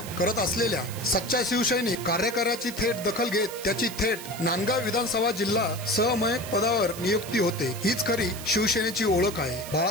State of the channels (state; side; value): noise; right; hiss, 12 dB below the sound